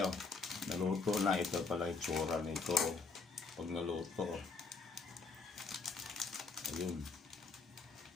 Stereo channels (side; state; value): right; quieter; 4.5 dB